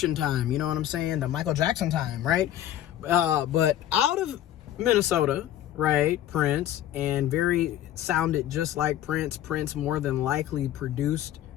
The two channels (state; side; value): quieter; right; 12.0 dB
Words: time, you know what I'm saying? The Michael Jackson time, right? But out of Minnesota, right, Prince, and sounded just like Prince. Prince more than likely produced